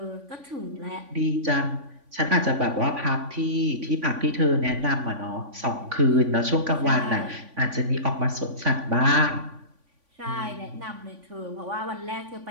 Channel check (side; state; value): left; late; 3.5 ms